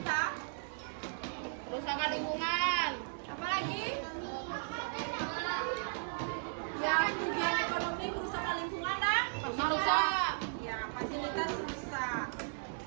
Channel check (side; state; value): left; silent; digital silence